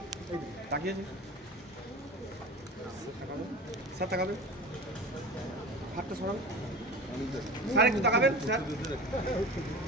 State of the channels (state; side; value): normal; both; correlation 0.33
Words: স্যার তাকাবেন, হাতটা সরাবেন স্যার, একটু তাকাবেন স্যার।